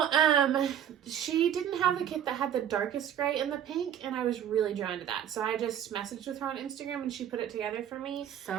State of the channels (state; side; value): quieter; left; 9.7 dB